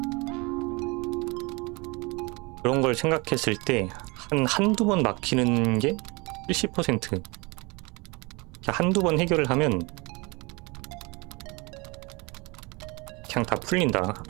그런 걸 생각했을 때 한두 번 막히는 게 70%. 한두 번 해결을 하면 그냥 다 풀린다.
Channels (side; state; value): left; quieter; 26.9 dB